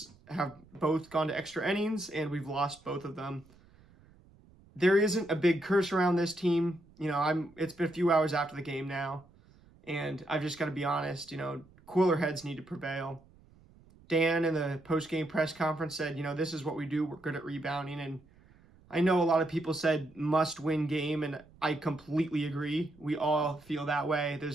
have both gone to extra innings, and we've lost both of them. There isn't a big curse around this team. It's been a few hours after the game now, and I've just got to be honest, cooler heads need to prevail. Dan in the post-game press conference said, this is what we do. We're good at rebounding. And I know a lot of people said must-win game, and I completely agree. We all feel that way.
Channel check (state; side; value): noise; right; rumble, 27 dB below the sound